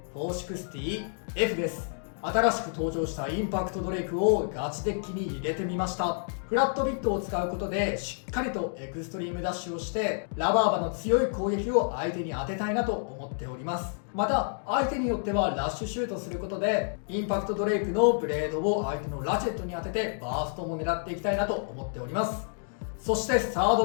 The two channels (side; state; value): right; silent; digital silence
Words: 460F です。新しく登場したインパクトドレイクをガチデッキに入れてみました。フラットビットを使うことでしっかりとエクストリームダッシュをしてラバーバの強い攻撃を相手に当てたいなと思っております。また相手によってはラッシュシュートすることでインパクトドレイクのブレードを相手のラチェットに当ててバーストも狙っていきたいなと思っております。そしてサー